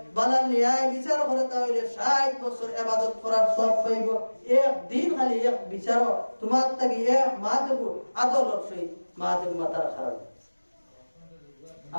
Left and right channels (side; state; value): both; inverted; correlation -1.00